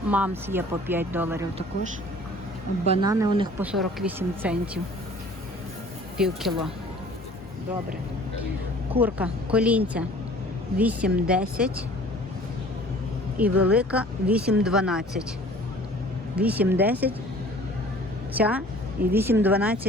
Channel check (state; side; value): normal; both; correlation 0.49